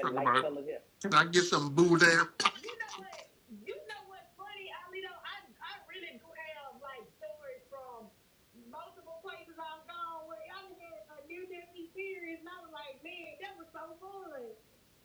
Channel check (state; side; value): identical; both; correlation 1.00